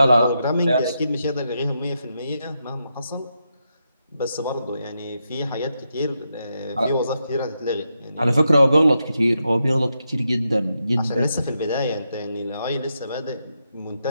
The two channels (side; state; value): both; inverted; correlation -0.84